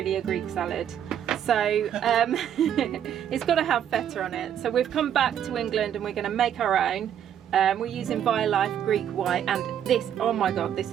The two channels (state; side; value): quieter; left; 9.7 dB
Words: a Greek salad. So it's got to have feta on it. So we've come back to England and we're going to make our own. We're using Violife Greek White, and this, oh my god, this